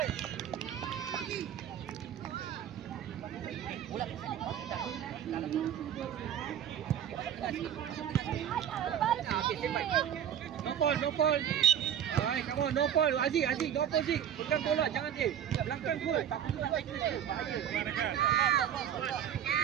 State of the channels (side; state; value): left; quieter; 9.7 dB